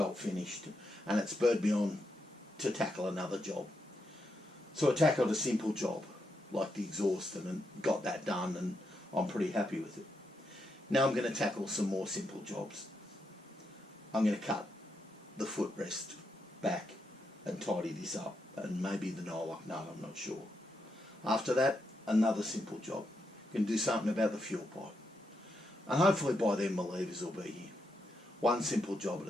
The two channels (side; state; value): both; normal; correlation 0.82